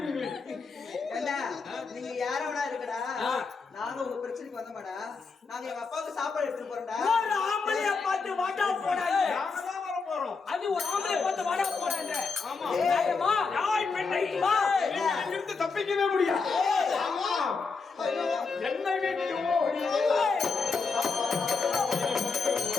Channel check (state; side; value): quieter; right; 4.7 dB